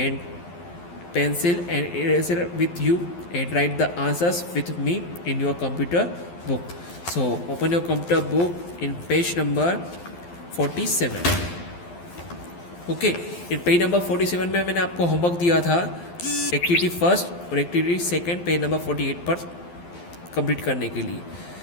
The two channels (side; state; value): right; late; 12 ms